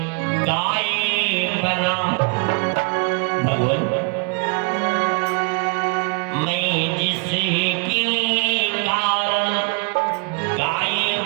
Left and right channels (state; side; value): quieter; left; 34.1 dB